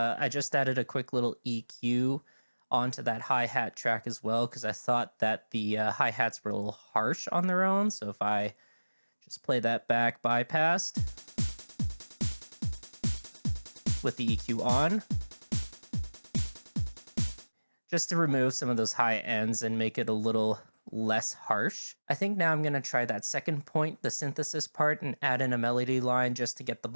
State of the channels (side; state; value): both; inverted; correlation -1.00